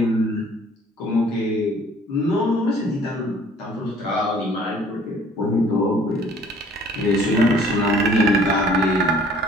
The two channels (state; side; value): normal; both; correlation 0.55